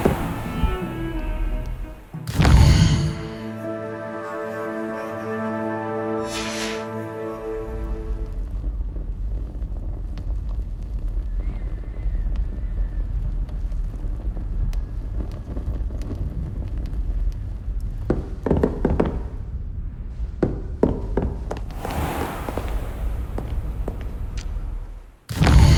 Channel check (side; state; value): both; identical; correlation 1.00